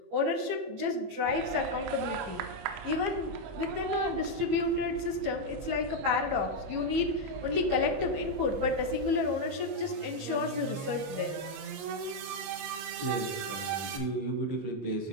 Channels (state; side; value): late; left; 21 ms